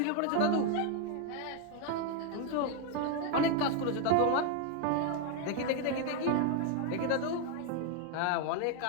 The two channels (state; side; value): different; both; correlation 0.01